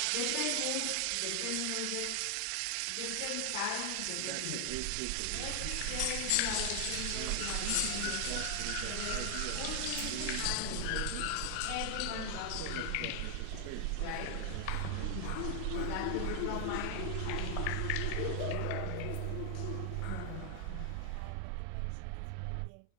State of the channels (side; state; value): both; different; correlation 0.00